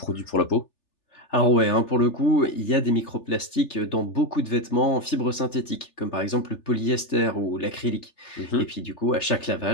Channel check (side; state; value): right; late; 3.3 ms